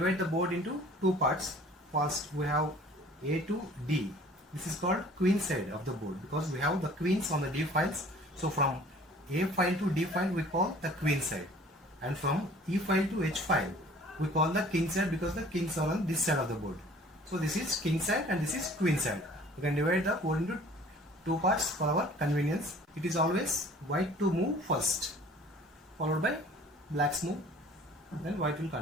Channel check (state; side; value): normal; both; correlation 0.50